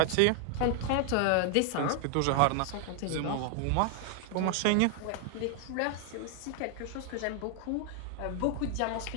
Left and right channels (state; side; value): different; both; correlation 0.00